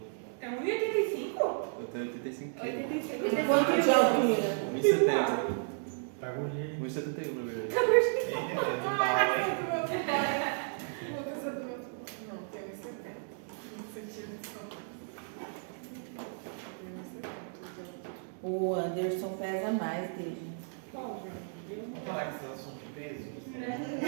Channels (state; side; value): silent; left; digital silence